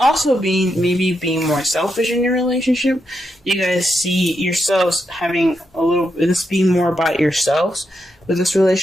be maybe being more selfish in your relationship. You guys see yourselves having this being more about yourselves with this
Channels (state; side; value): normal; both; correlation 0.83